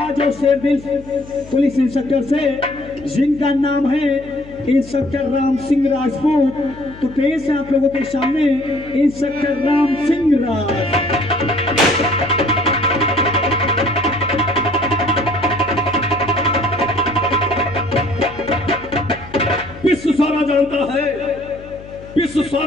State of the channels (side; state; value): left; noise; hum, 18 dB below the sound